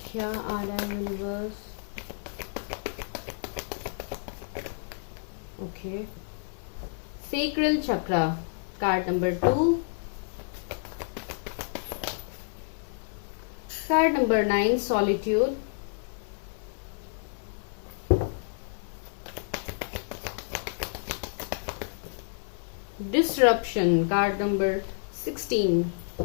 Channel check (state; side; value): silent; right; 58 dB below the other